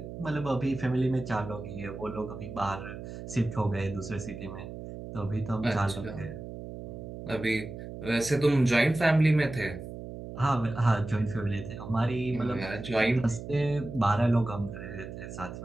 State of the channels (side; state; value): right; noise; hum, 10 dB below the sound